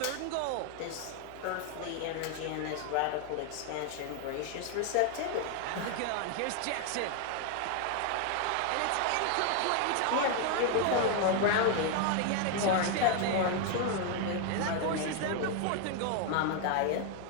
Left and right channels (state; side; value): different; both; correlation 0.00